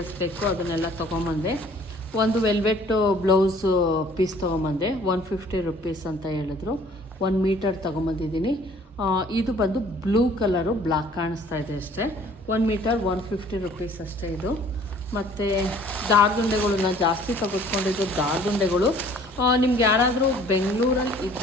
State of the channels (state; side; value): normal; both; correlation 0.54